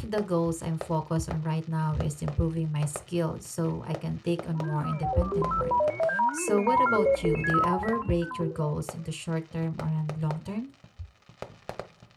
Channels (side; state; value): both; identical; correlation 1.00